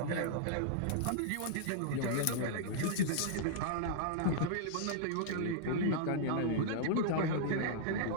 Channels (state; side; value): different; both; correlation -0.01